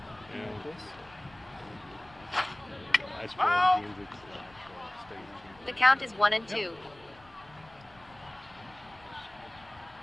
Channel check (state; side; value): noise; left; rumble, 25 dB below the sound